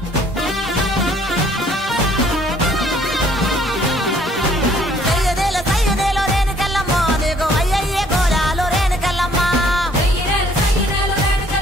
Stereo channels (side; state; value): both; normal; correlation 0.61